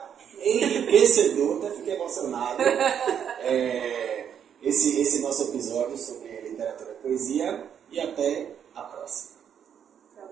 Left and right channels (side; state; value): left; quieter; 8.5 dB